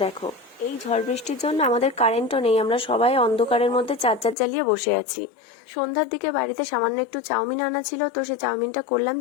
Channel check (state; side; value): drops out; right; at 4.4 s